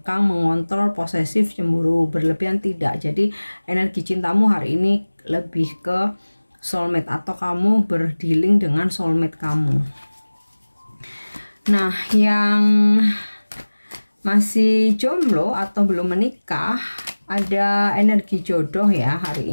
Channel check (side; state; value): both; inverted; correlation -1.00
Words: mengontrol, posesif, cemburu berlebihan, tidak. Jadi energi cintamu hari ini lebih ke soulmate, atau kamu berdealing dengan soulmate kamu. Nah, yang masih jomblo atau belum menikah, ada energi jodoh ya hari